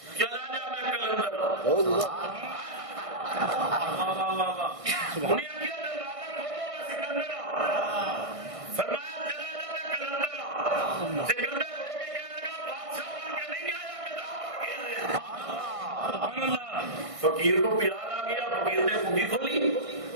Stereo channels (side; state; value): left; late; 1.6 ms